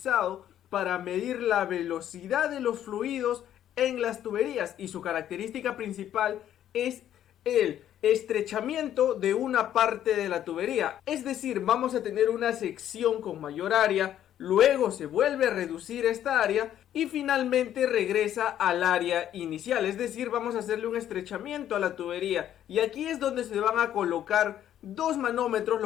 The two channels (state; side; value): quieter; right; 11.1 dB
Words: para medir la velocidad de los fluidos en las tuberías y su característica principal es el estrechamiento de una parte de la tubería. Es decir, vamos a tener una sección con mayor área, luego se vuelve a reducir esta área y finalmente regresa al área inicial. Es decir, vamos a hacerle un estrechamiento a la tubería y aquí es donde se van a colocar dos manómetros,